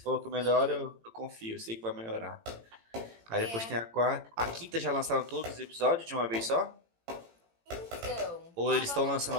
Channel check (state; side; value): late; left; 18 ms